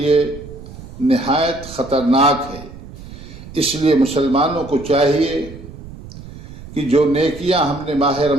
نہایت خطرناک ہے۔ اس لیے مسلمانوں کو چاہیے کہ جو نیکیاں ہم نے ماہ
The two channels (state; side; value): noise; right; rumble, 15 dB below the sound